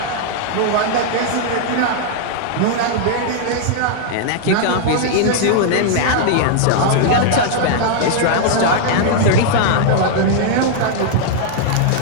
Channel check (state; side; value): different; both; correlation -0.01